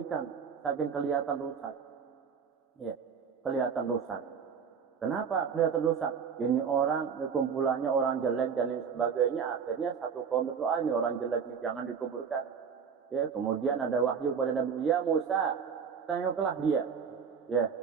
saking kelihatan rusak. Ya, kelihatan rusak. Kenapa kelihatan rusak? Ini orang, kumpulannya orang jelek dan lain sebagainya. Akhirnya satu kaum berdoa, ini orang jelek ini jangan dikuburkan. Ya, kemudian ada wahyu kepada Nabi, ya Musa, tengoklah dia. Ya,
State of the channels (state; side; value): quieter; left; 6.6 dB